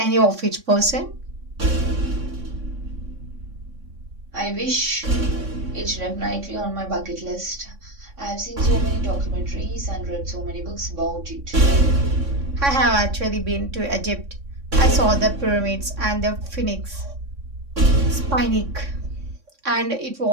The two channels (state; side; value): late; left; 3.6 ms